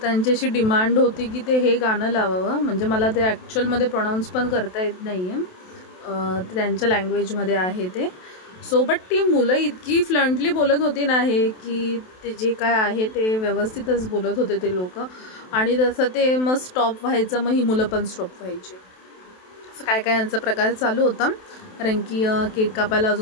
त्यांची अशी डिमांड होती की ते हे गाणं लावावं. म्हणजे मला ते ॲक्च्युअलमध्ये प्रोनाऊन्स पण करता येत नाही आहे, त्यांच्या लँग्वेजमध्ये आहे ते. सो बट ती मुलं इतकी फ्लंटली बोलत होती ना हे की ते जे काय आहे ते व्यवस्थितच बोलत होते ते लोक. आणि तसं ते मग स्टॉप व्हायचं, मग ही मुलं पण स्टॉप व्हायची. असं काय काय यांचा प्रकार चालू होता. कारण की केक कापायला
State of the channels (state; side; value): late; right; 27 ms